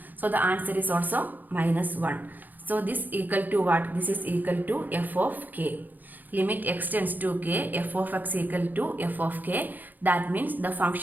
So the answer is also minus 1. So this equal to what? This is equal to f of k. Limit x tends to k, f of x equal to f of k. That means the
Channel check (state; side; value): late; left; 0.085 ms